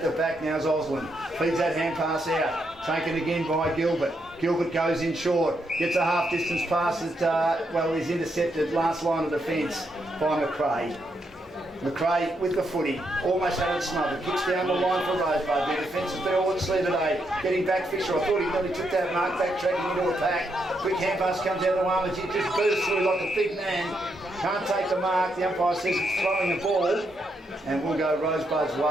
the back now is Osland. Feeds that hand pass out. Taken again by Gilbert. Gilbert goes in short. Gets a half distance pass that, he's intercepted last line of defence by McRae. McRae with the footy, almost had it smothered, kicks down the line for Rosebud. Their defence has been all at sea today. Getting back Fisher, I thought he nearly took that mark, backtracking into a pack. Quick hand pass comes out of the one, but he just bursts through like a big man. Can't take the mark, the umpire says it's throwing the ball, and we'll go Rosebud's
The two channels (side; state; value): both; normal; correlation 0.79